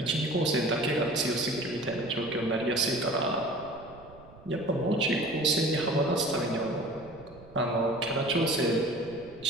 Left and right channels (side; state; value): right; noise; rumble, 21 dB below the sound